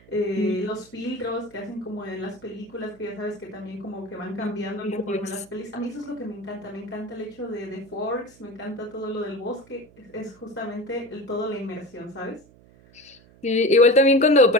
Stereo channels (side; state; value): right; noise; hum, 26 dB below the sound